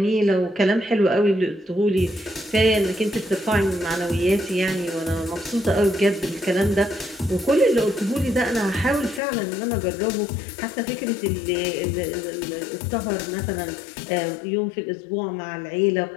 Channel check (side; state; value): right; drops out; at 9.2 s